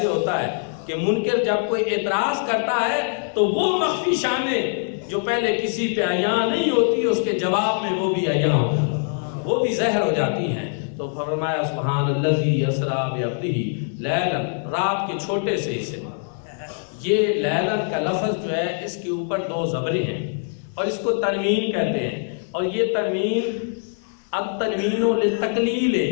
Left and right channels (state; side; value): silent; right; 63 dB below the other